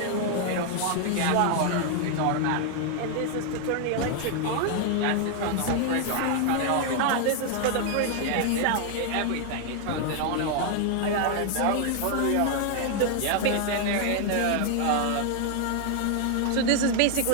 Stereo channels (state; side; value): different; both; correlation 0.00